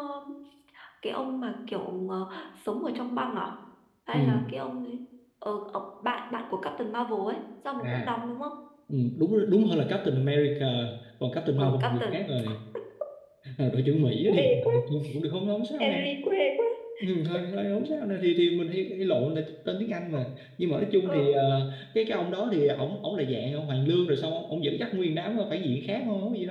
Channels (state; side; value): identical; both; correlation 1.00